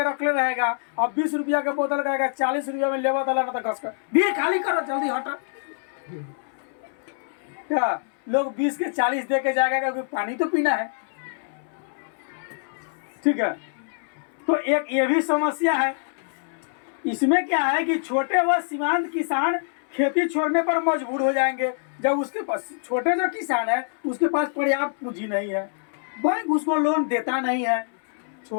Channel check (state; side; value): silent; right; 62 dB below the other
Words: रखले रहेगा। अब 20 रुपया के बोतल कहेगा 40 रुपया में लेवा तला ना तो घस कर भी खाली करो, जल्दी हटा। क्या लोग 20 के 40 दे के जाएगा क्योंकि पानी तो पीना है। ठीक है, तो एक ये भी समस्या है। इसमें क्या है कि छोटे व सीमांत किसान खेती छोड़ने पर मजबूर हो जाएंगे जब उसके पास, छोटे जो किसान है उसके पास पर्याप्त पूंजी नहीं है, बैंक उसको लोन देता नहीं है।